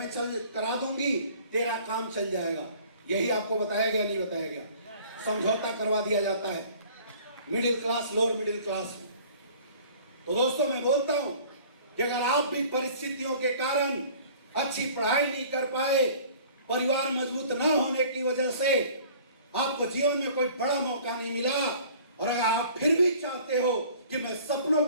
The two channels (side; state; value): both; inverted; correlation -0.50